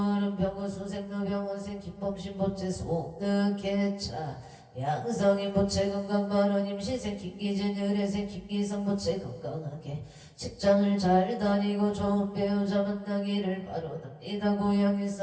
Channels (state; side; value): identical; both; correlation 1.00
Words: 병원수생 노병원생 김범신 부채 소득개차 양성인 부채 건강바른 임시생 김기진 의뢰생 김기성 부채 건강하게 직장을 잘 다니고 좋은 배우자 만나기를 바라옵니다. 고향